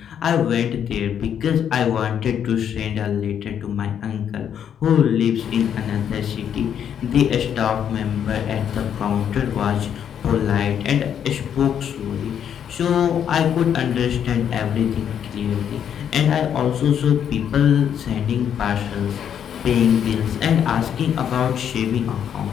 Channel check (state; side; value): quieter; right; 8.8 dB